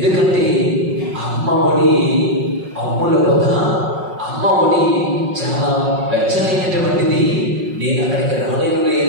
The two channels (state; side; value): late; left; 5.4 ms